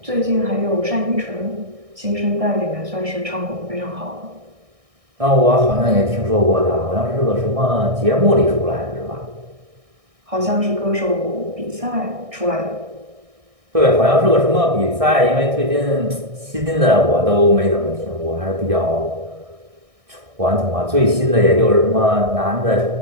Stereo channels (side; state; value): left; late; 1.6 ms